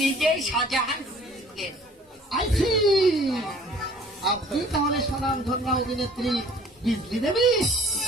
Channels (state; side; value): normal; both; correlation 0.52